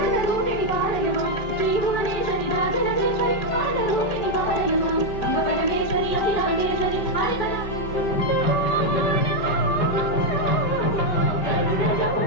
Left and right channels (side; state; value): right; late; 5.2 ms